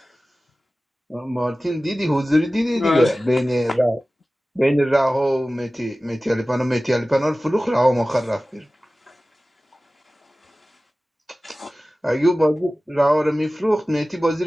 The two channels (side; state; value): both; normal; correlation 0.97